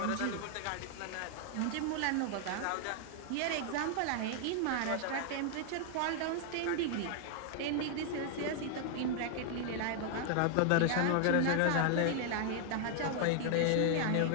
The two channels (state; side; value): different; both; correlation 0.00